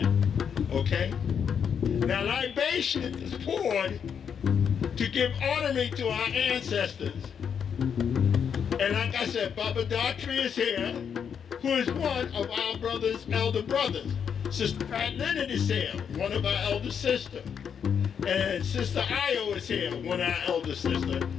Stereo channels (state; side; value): quieter; right; 7.4 dB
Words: okay? Now libation is poured to give honoring to our ancestors. And like I said, Baba Daughtry is here, who is one of our elder brothers. Sister Pat Leonard is here, one of our elder sisters. And Sister Io is here, one of our elder sisters.